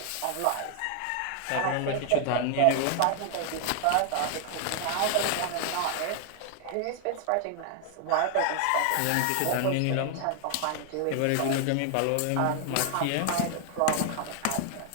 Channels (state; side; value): different; both; correlation 0.00